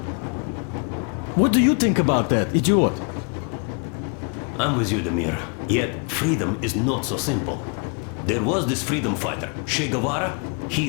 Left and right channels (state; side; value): quieter; right; 38.8 dB